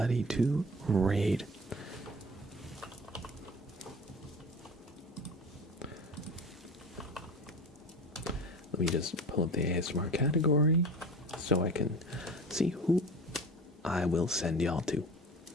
to raid. Let me just pull up the ASMR category so I can see who I will send y'all to.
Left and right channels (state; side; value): normal; both; correlation 0.37